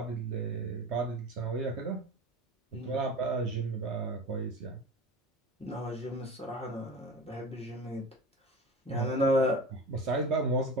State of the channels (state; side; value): normal; both; correlation 0.33